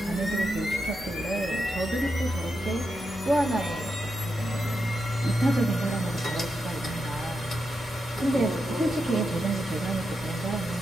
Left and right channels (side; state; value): both; normal; correlation 0.86